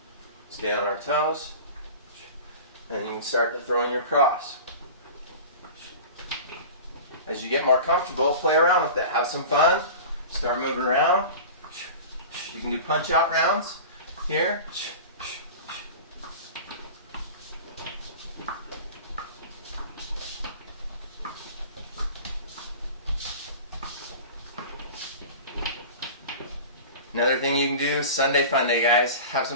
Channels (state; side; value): inverted; both; correlation -0.35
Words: Stay on our toes, and you can start to throw in your cross. As you get more comfortable, play around with it. Have some fun. Start moving around. You can do punch out rounds here. Another thing you can do, Sunday Fun Day, guys. Have